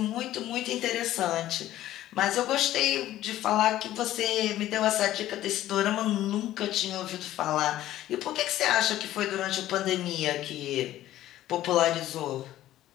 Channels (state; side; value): quieter; right; 13.9 dB